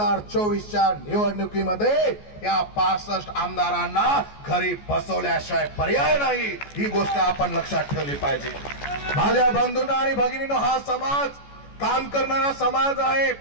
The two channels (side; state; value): right; late; 14 ms